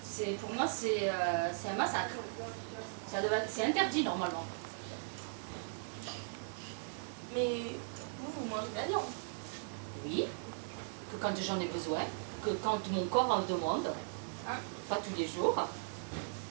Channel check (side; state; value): left; silent; digital silence